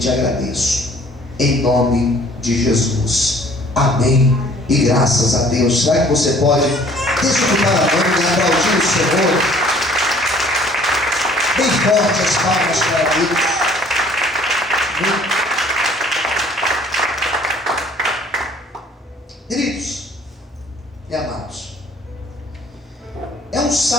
agradeço. Em nome de Jesus. Amém. E graças a Deus. Será que você pode desfrutar a mão e aplaudir o Senhor? Bem forte as palmas para Deus. Queridos e amados, é um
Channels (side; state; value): both; normal; correlation 0.55